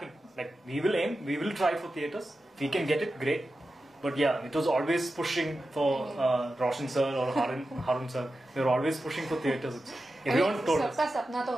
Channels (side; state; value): both; normal; correlation 0.92